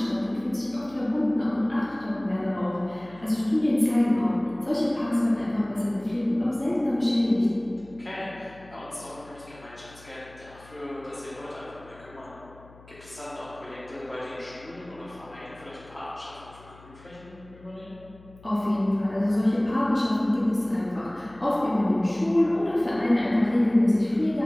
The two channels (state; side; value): noise; left; hum, 23 dB below the sound